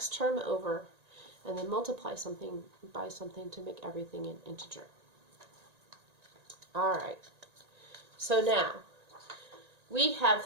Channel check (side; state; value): left; late; 1.9 ms